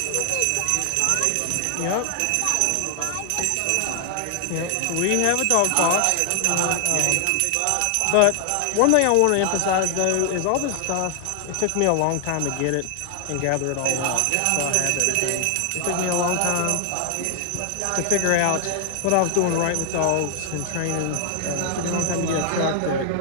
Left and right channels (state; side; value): different; both; correlation 0.00